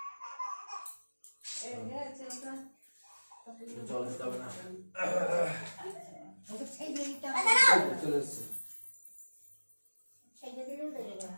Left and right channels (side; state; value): both; inverted; correlation -1.00